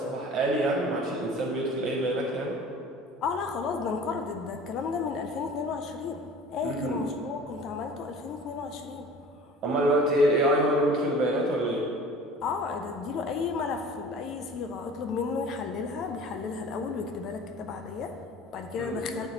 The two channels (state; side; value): normal; both; correlation 0.43